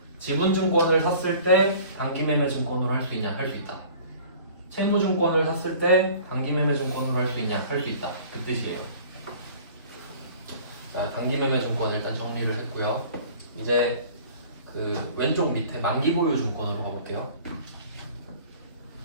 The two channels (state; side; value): inverted; both; correlation -0.47